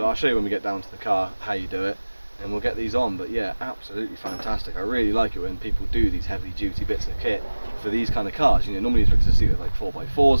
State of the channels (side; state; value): both; inverted; correlation -1.00